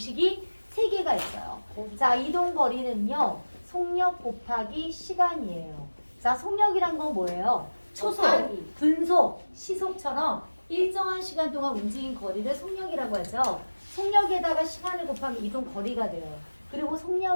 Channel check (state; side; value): inverted; both; correlation -1.00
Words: 3개가 있어요. 자, 이동거리는요. 속력 곱하기 시간이에요. 자, 속력이란 건 뭐예요? 초속, 곱하기. 분속, 시속처럼 일정한 시간 동안 움직인 거리를 속력이라고 하죠. 속력에다가 시간을 곱하면 이동 거리가 돼요. 그리고